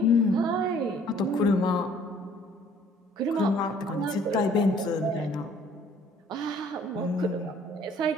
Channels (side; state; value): both; normal; correlation 0.57